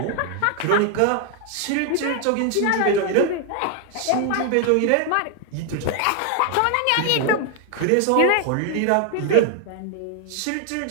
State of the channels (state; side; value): different; both; correlation 0.00